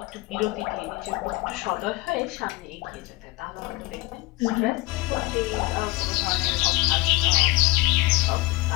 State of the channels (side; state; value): right; quieter; 21.8 dB